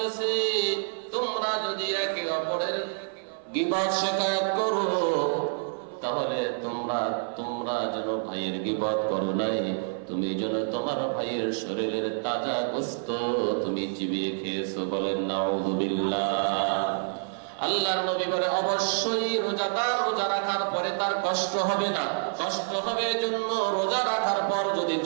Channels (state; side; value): silent; left; 56 dB below the other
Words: তোমরা যদি একে অপরের গীবত শিকায়ত করো, তাহলে তোমরা যেন ভাইয়ের গীবত করো নাই, তুমি যেন তোমার ভাইয়ের শরীরের তাজা গোশত তুমি চিবিয়ে খেয়েছো। বলেন নাউযুবিল্লাহ। আল্লাহর নবী বলে, অবশ্যই রোজাদার রোজা রাখার পরে তার কষ্ট হবে না। কষ্ট হবে এজন্য, রোজা রাখার পর যদি